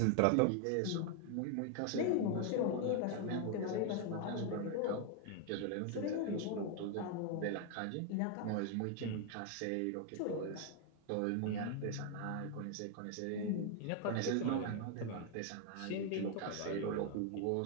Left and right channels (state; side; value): different; both; correlation 0.00